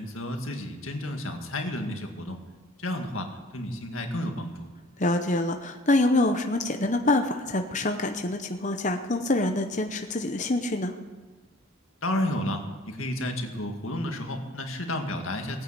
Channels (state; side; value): normal; both; correlation 0.52